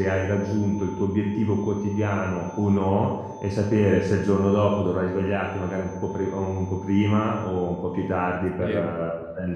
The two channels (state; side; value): identical; both; correlation 1.00